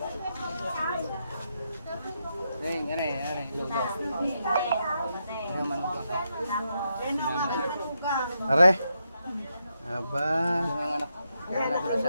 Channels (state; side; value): inverted; both; correlation -0.82